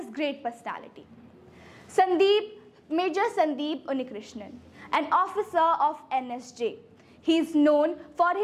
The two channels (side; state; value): both; identical; correlation 1.00